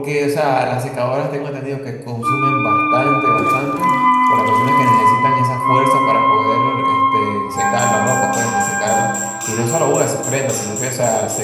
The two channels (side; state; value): both; identical; correlation 1.00